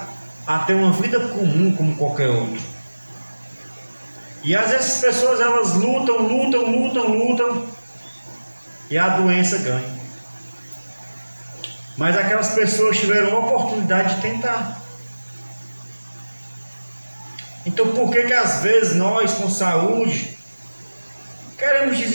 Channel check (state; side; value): inverted; both; correlation -1.00